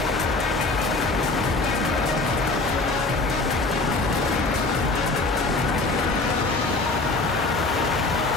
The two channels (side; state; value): right; quieter; 3.3 dB